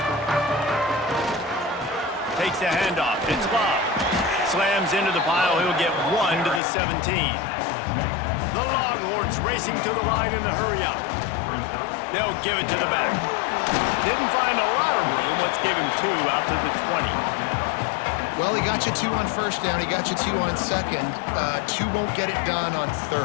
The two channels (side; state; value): right; drops out; at 6.6 s